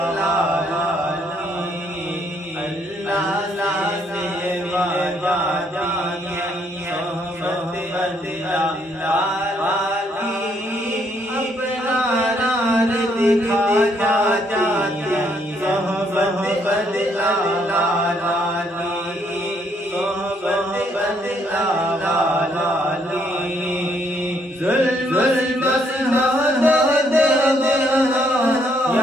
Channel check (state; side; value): normal; both; correlation 0.70